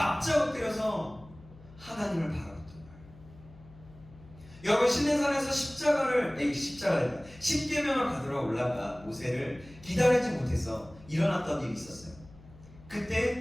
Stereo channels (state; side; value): noise; left; hum, 21 dB below the sound